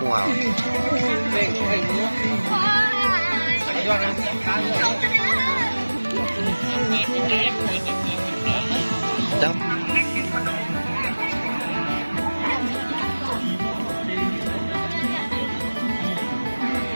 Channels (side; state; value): both; inverted; correlation -1.00